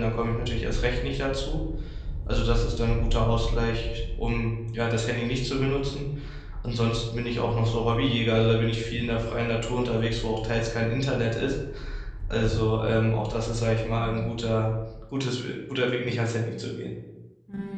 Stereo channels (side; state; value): both; identical; correlation 1.00